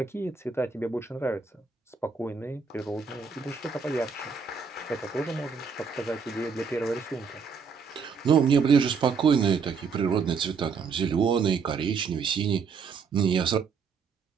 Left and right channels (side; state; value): left; quieter; 5.6 dB